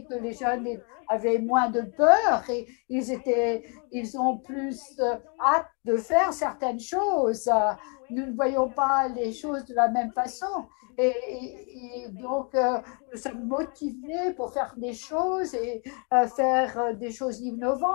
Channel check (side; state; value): right; quieter; 37.0 dB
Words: que les jeunes avaient moins de peur et ils ont plus hâte de faire certaines choses. Nous ne voyons pas les choses de la même façon. Et donc, nous sommes motivés pour faire des choses et faire des choses